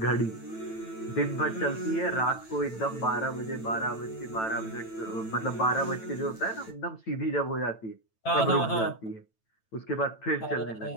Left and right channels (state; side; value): late; right; 9.0 ms